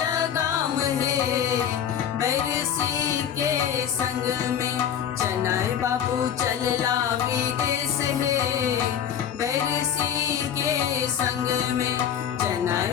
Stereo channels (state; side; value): quieter; right; 9.1 dB